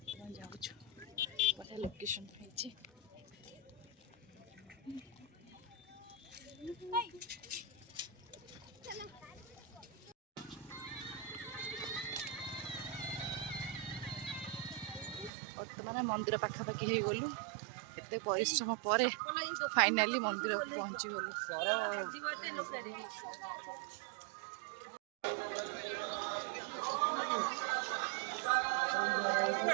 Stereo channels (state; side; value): drops out; left; at 15.3 s